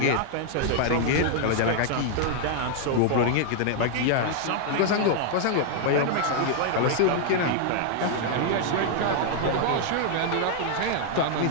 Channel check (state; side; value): different; both; correlation 0.00